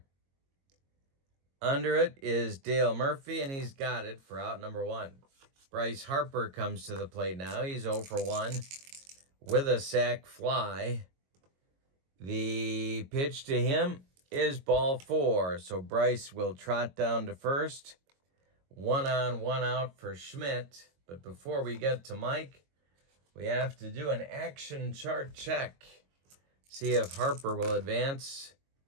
Under it is Dale Murphy, and he's got it for out number 1. Bryce Harper comes to the plate now. He's 0 for 1 with a sac fly. The pitch to him is ball 4, so Bryce will trot down to first. 1 on, 1 out for Schmidt. But before we get to Mike, we have to do an action chart check. See if Harper will advance.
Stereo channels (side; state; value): left; late; 22 ms